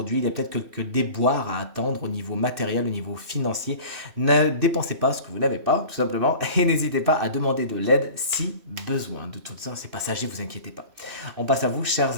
il y a peut-être quelques déboires à attendre au niveau matériel, au niveau financier. Ne dépensez pas ce que vous n'avez pas, tout simplement, et n'hésitez pas à demander de l'aide si besoin. De tout ça, c'est passager, vous inquiétez pas. On passe à vous,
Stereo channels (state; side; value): late; left; 2.6 ms